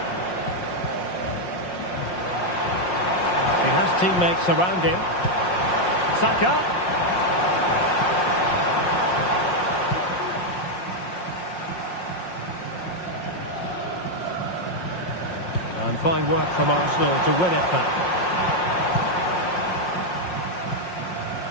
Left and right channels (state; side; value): late; right; 5.6 ms